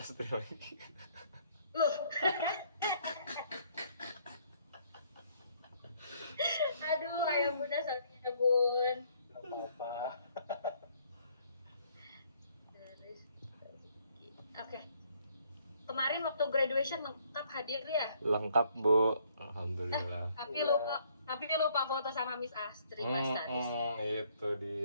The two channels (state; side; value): inverted; both; correlation -0.65